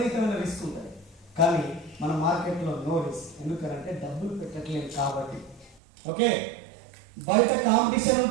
రిస్క్ ఉంటుంది. కానీ మన మార్కెట్లో నో రిస్క్, ఎందుకంటే డబ్బులు పెట్టట్లేదు కాబట్టి. ఓకే, బయట కాంపిటీషన్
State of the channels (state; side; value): drops out; left; at 5.8 s